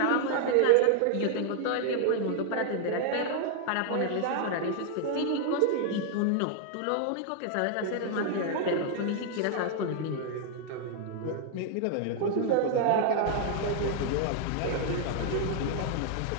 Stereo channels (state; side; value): different; both; correlation 0.00